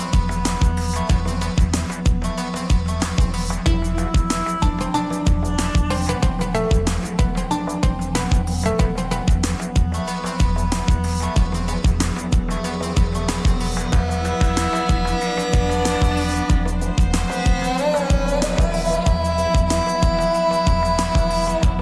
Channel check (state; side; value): identical; both; correlation 1.00